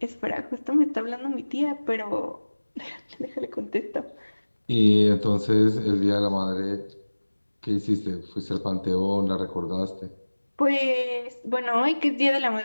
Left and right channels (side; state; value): both; inverted; correlation -1.00